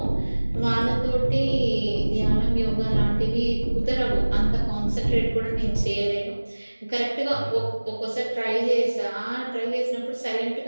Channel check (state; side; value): inverted; both; correlation -1.00